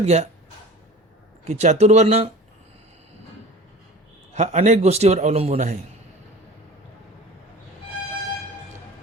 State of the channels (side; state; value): both; normal; correlation 0.40